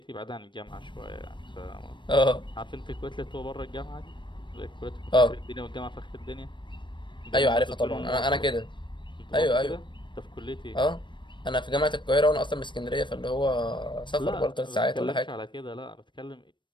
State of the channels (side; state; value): right; late; 0.23 ms